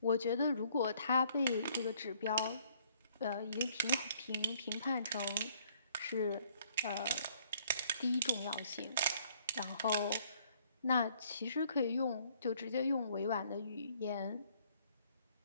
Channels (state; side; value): inverted; both; correlation -0.63